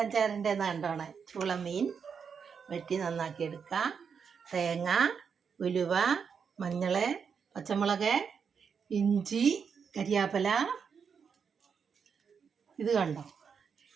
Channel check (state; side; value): quieter; left; 6.4 dB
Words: ചേരേണ്ടതെന്ന് കണ്ടോണേ. ചൂള മീൻ വെട്ടി നന്നാക്കി എടുക്കാം. തേങ്ങ, ഉലുവ, മഞ്ഞൾ, പച്ചമുളക്, ഇഞ്ചി, കരിയാപ്പില. ഇത് കണ്ടോ,